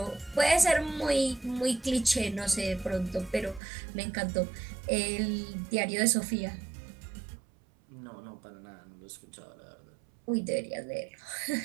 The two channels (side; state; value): left; drops out; at 3.6 s